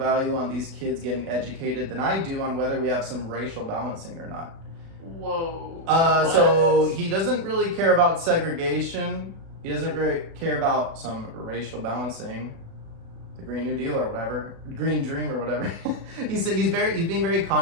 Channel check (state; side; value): late; left; 36 ms